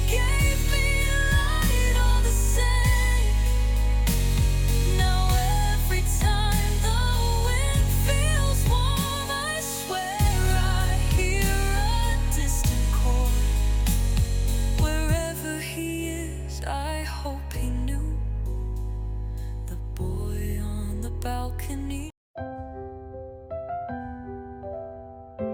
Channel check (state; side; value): identical; both; correlation 1.00